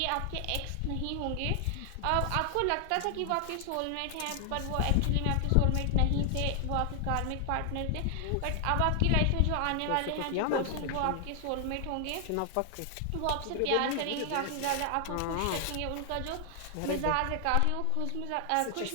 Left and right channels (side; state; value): both; different; correlation 0.00